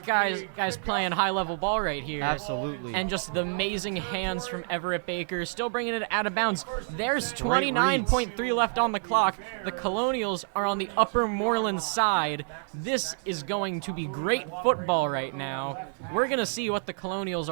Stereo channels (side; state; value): left; silent; 59 dB below the other